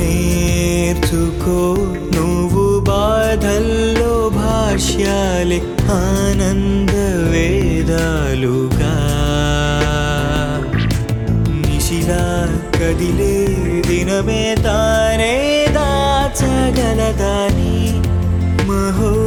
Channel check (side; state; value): both; identical; correlation 1.00